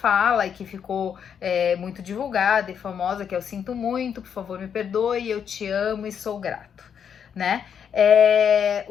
e que ficou muito divulgada e famosa, que é: eu sinto muito, por favor me perdoe, eu te amo e sou grato, né?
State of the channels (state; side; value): quieter; right; 7.8 dB